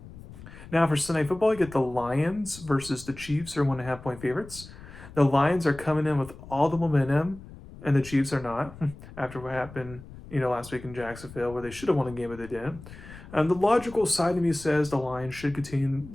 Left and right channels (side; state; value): left; noise; rumble, 17 dB below the sound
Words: Now for Sunday football, you get the Lions versus the Chiefs, are 1.5-point favorites. The Lions are coming in with all the momentum, and the Chiefs are not, after what happened, last week in Jacksonville, where they should have won a game, but they didn't. The logical side of me says the Lions should continue